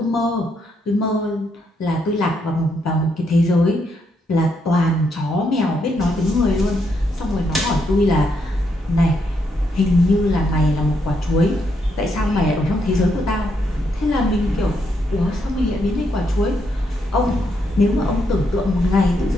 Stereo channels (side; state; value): both; normal; correlation 0.77